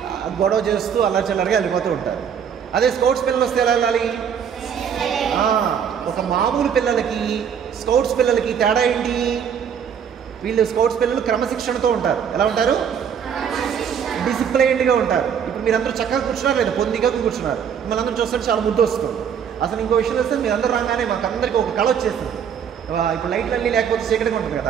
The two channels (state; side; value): quieter; left; 7.8 dB